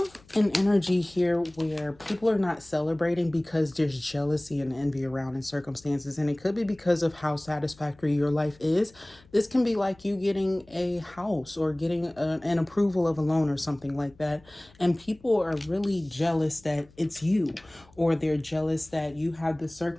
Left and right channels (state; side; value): noise; left; hum, 27 dB below the sound